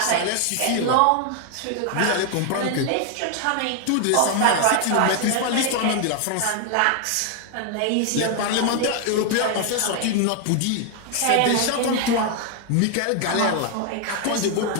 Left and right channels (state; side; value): different; both; correlation 0.00